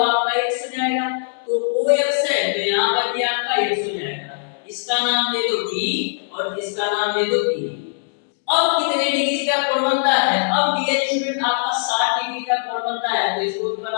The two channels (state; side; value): silent; right; digital silence